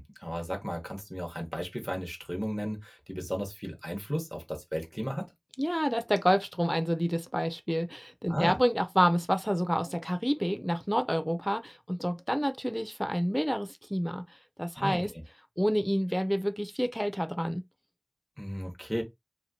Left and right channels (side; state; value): both; identical; correlation 1.00